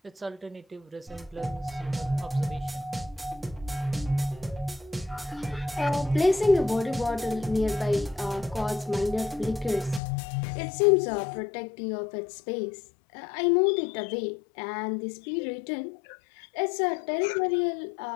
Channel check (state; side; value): drops out; right; at 10.0 s